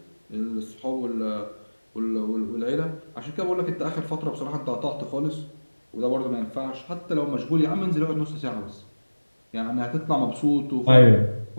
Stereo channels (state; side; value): inverted; both; correlation -1.00